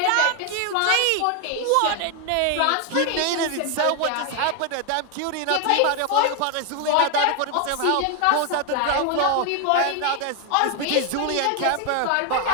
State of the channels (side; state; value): both; different; correlation 0.01